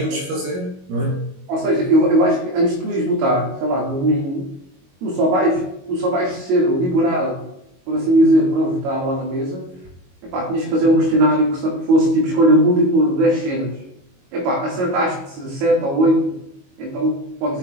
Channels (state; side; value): late; left; 22 ms